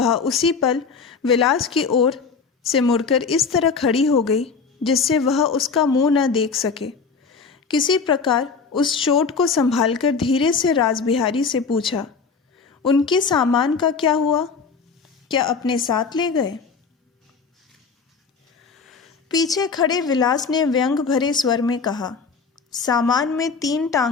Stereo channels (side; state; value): right; quieter; 5.2 dB